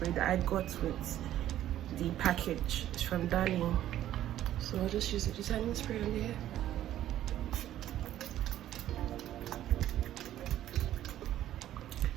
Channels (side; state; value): left; quieter; 12.5 dB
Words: that I got with the package. It's from Darling. So I'll just use the detangling spray on the hair.